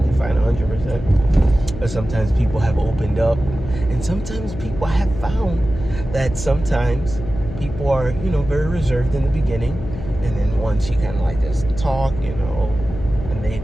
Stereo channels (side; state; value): left; noise; hum, 10 dB below the sound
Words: fine, 100%. But sometimes people have opened up, and sometimes people have found that sometimes people are, very reserved in the beginning, and then once you kind of like just talk, and